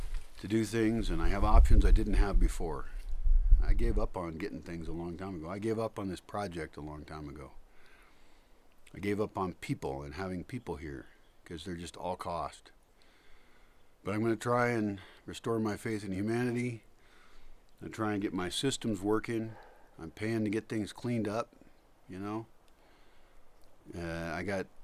do things, and I have options I didn't have before. I gave up on getting things a long time ago. I gave up on this project a long time ago. I gave up on people and having people here because they're just all cost. But I'm going to try and restore my faith in humanity and try and get my systems working. I'm paying to get things cleaned up, you know. I got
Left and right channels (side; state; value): both; identical; correlation 1.00